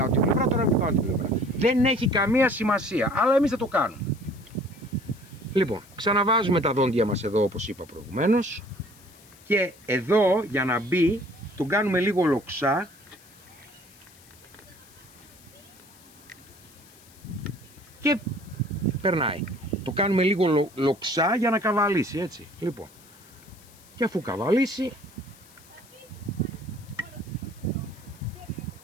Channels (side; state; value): left; noise; hiss, 25 dB below the sound